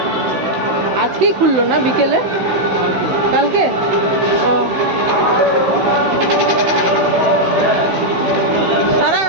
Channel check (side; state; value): left; late; 16 ms